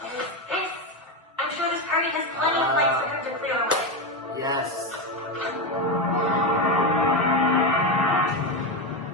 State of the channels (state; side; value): normal; both; correlation 0.12